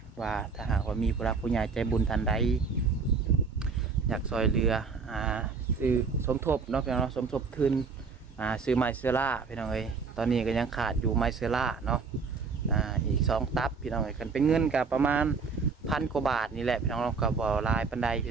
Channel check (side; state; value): left; quieter; 5.0 dB